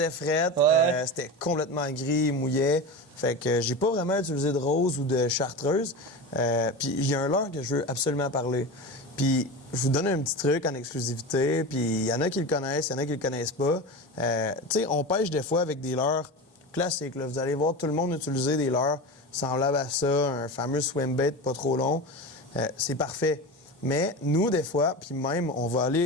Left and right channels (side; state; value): both; normal; correlation 0.25